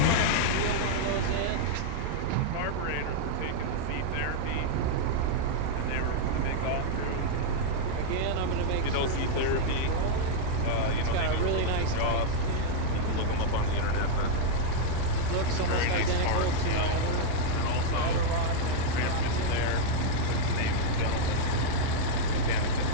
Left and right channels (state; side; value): different; both; correlation -0.01